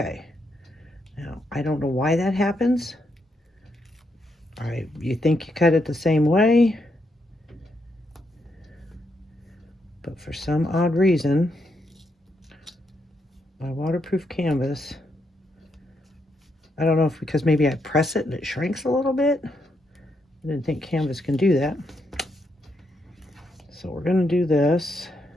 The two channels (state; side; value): normal; both; correlation 0.79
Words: Now, I don't know why that happens. All right, you think you cut it the same way, but for some odd reason, my waterproof canvas, I don't know if because maybe I press it and it shrinks a little bit. I didn't think canvas can do that. So we're going to do this.